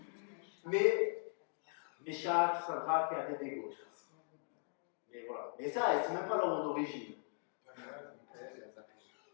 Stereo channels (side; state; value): right; silent; 51 dB below the other